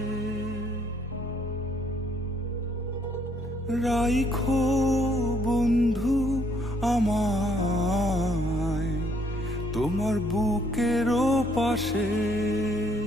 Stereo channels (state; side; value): normal; both; correlation 0.67